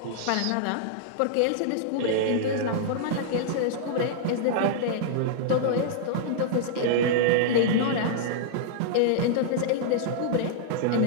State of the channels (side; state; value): both; different; correlation -0.02